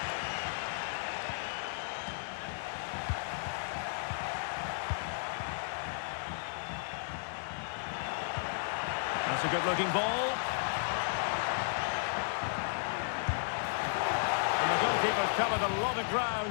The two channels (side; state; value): right; silent; digital silence